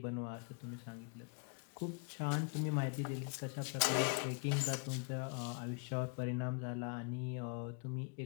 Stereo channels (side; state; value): right; quieter; 37.2 dB